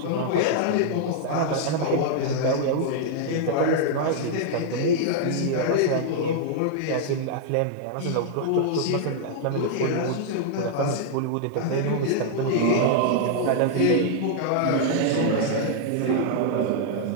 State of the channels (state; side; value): different; both; correlation -0.01